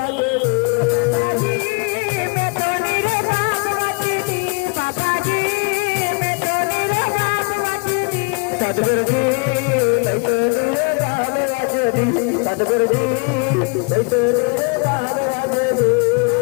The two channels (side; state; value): right; quieter; 31.8 dB